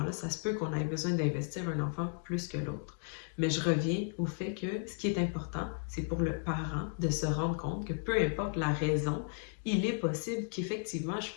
ça se peut qu'on ait besoin d'investir un enfant plus que l'autre. Mais je reviens au fait que ce qui est important, c'est pour le parent de se rendre compte que peu importe la raison, il est possible qu'effectivement je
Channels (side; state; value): right; silent; 55 dB below the other